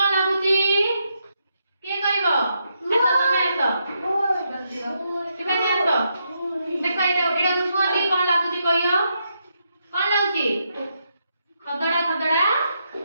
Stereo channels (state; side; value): inverted; both; correlation -0.80